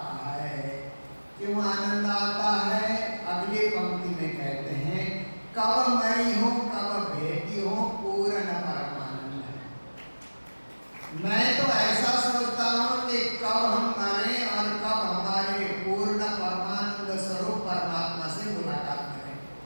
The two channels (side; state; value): both; inverted; correlation -1.00